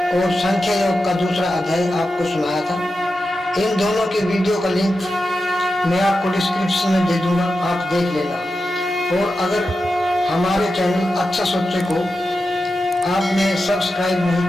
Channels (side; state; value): both; normal; correlation 0.90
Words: और संख्या योग का दूसरा अध्याय आपको सुनाया था। इन दोनों के वीडियो का लिंक मैं आपको डिस्क्रिप्शन में दे दूंगा, आप देख लेना। और अगर हमारे चैनल अच्छा सोचे को आपने सब्सक्राइब नहीं